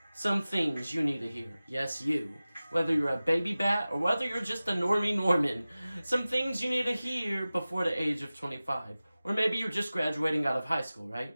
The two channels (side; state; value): both; inverted; correlation -0.97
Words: some things you need to hear. Yes, you. Whether you're a baby bat or whether you're just a normie Norman. Some things you need to hear before the age of 25. Or maybe you're just graduating out of high school,